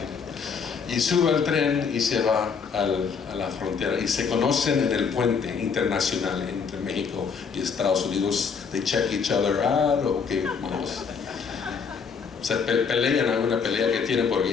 Y sube al tren y se va a la frontera y se conocen en el puente internacional entre México y Estados Unidos. They check each other out, o que vamos. Se pelean, hay una pelea que tienen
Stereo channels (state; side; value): quieter; right; 5.9 dB